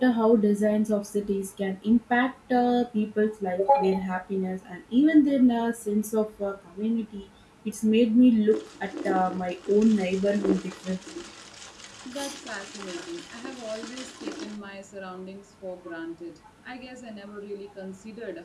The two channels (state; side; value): identical; both; correlation 1.00